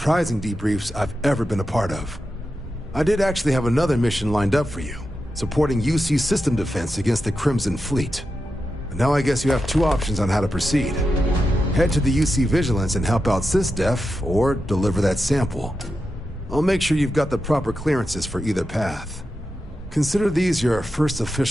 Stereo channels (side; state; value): both; normal; correlation 0.89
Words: debriefs I've ever been a part of. I did actually have another mission lined up for you, supporting UC system defense against the Crimson Fleet. But now I guess you have two options on how to proceed. Head to the UC Vigilance and help out SysDef, or deliver that sample. I'll make sure you've got the proper clearances for either path. Consider these your first